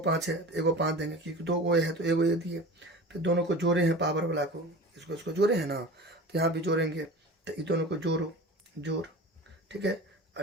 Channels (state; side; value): normal; both; correlation 0.35